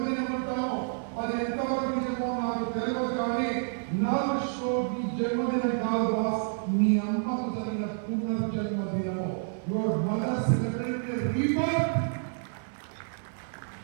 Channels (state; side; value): silent; left; 56 dB below the other